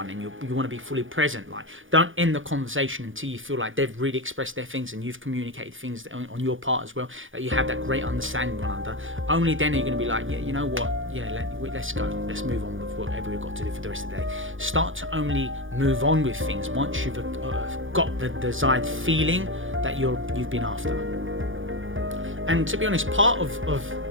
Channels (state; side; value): late; left; 0.58 ms